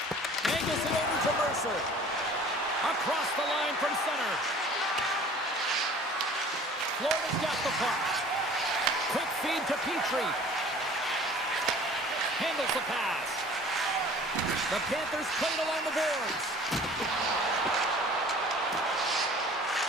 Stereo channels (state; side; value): normal; both; correlation 0.47